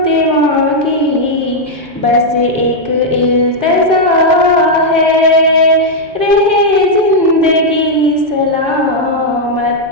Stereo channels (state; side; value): normal; both; correlation -0.02